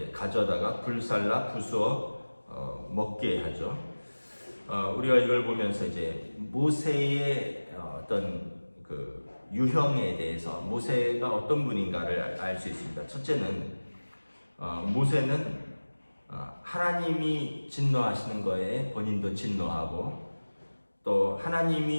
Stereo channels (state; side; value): inverted; both; correlation -1.00